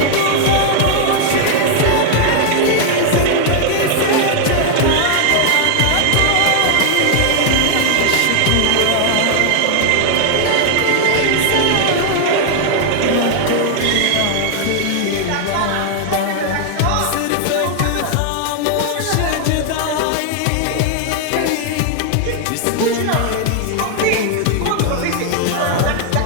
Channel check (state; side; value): different; both; correlation 0.00